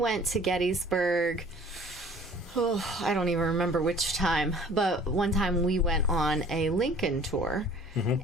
to Gettysburg, I don't even remember which time, but one time we went on a Lincoln tour.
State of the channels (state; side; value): normal; both; correlation 0.50